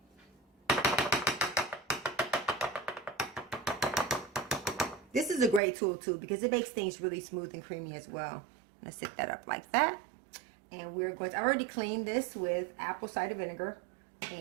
This is a great tool too because it makes things really smooth and creamy as well. I'm gonna set that up like that. And we're going to, I already cleaned this with apple cider vinegar.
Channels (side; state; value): left; drops out; at 5.6 s